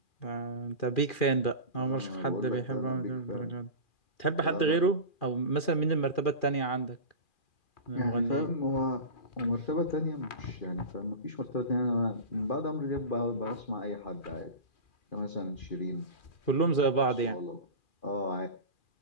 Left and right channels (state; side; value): late; right; 2.4 ms